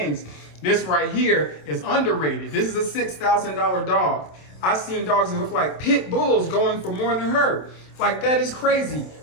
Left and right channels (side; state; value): right; late; 27 ms